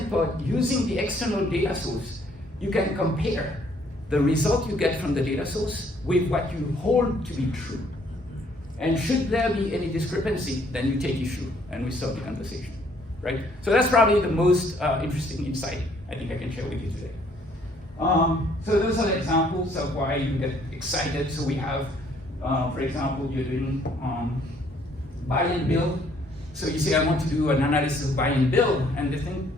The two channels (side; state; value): both; normal; correlation 0.64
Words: part, using the external data source, you can compare the result you get from the data source with what you hold to be true. And should there be any discrepancy, then you take issue and we start the conversation, right? So that's probably the most interesting insight I think I can share with you today. So those are the examples of why you get excited. So we have, for example, you're doing buy and bill. So you say, I want to do an analysis of buy and bill, and the thing